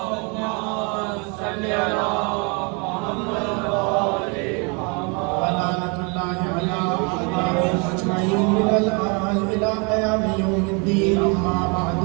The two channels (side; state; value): left; quieter; 33.1 dB